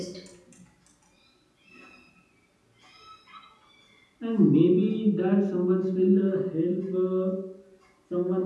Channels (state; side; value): identical; both; correlation 1.00